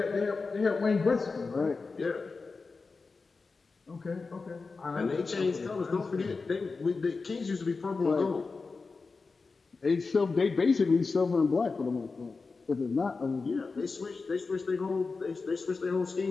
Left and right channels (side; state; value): right; quieter; 4.3 dB